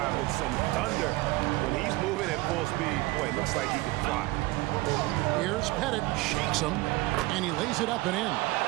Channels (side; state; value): left; quieter; 20.3 dB